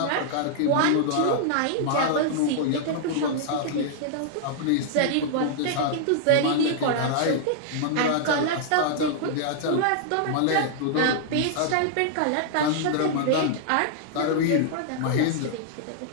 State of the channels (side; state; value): both; different; correlation -0.01